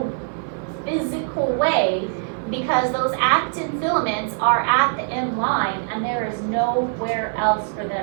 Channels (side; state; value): left; silent; digital silence